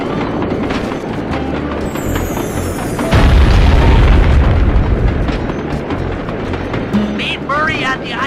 Meet Murray at the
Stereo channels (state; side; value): identical; both; correlation 1.00